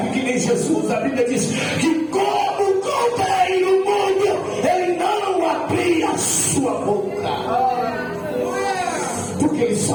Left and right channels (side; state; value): both; identical; correlation 1.00